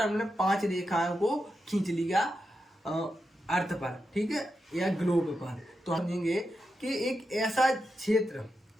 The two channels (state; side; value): normal; both; correlation 0.88